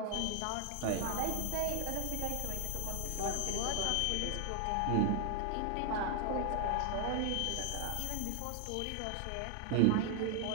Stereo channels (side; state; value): both; different; correlation 0.00